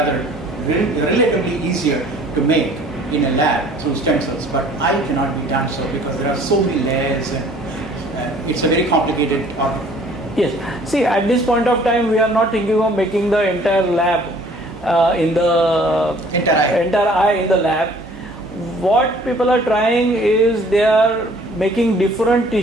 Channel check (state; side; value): normal; both; correlation 0.54